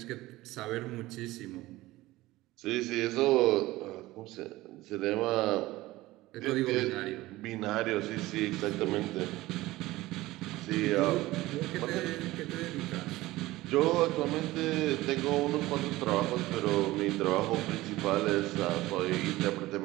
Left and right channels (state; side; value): quieter; left; 18.1 dB